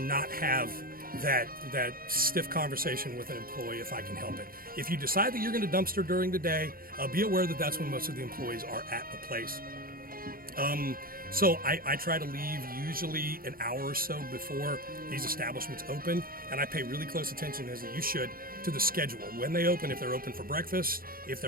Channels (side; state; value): left; late; 0.42 ms